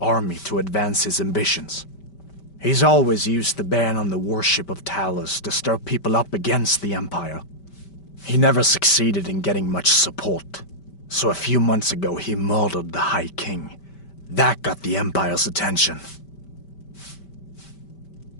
to advance his ambitions. He's always used the ban on the worship of Talos to stir people up against the Empire. He never succeeded in getting much support, so a few months ago he murdered the High King. That got the Empire's attention.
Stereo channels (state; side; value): late; right; 5.1 ms